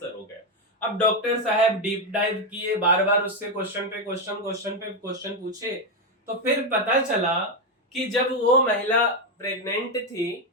हो गया। अब डॉक्टर साहब डीप डाइव किए, बार बार उससे क्वेश्चन पे क्वेश्चन, क्वेश्चन पे क्वेश्चन पूछे, तो फिर पता चला कि जब वो महिला प्रेग्नेंट थी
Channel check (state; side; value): normal; both; correlation 0.07